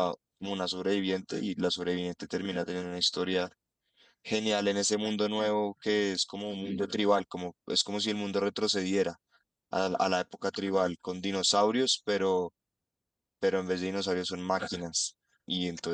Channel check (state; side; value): identical; both; correlation 1.00